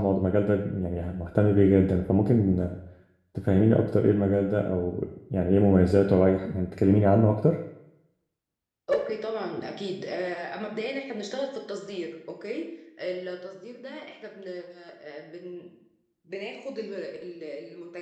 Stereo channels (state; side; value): identical; both; correlation 1.00